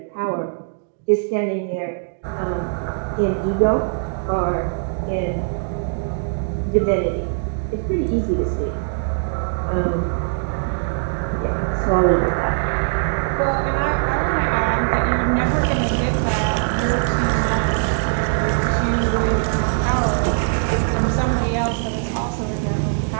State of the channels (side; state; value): left; silent; digital silence